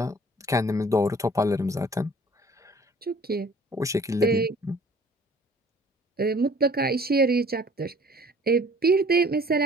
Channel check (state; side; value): normal; both; correlation 0.52